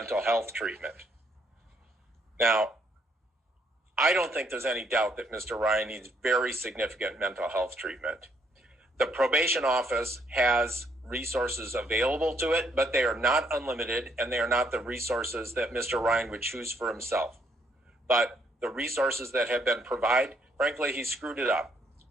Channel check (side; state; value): both; normal; correlation 0.70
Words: health treatment. Now, I don't think there's any doubt that Mr. Ryan needs very significant mental health treatment. The probation office has resources available to it, but they are not unlimited, and they are not the resources that Mr. Ryan would choose for himself. But the resources that have been provided, frankly, he screwed it up.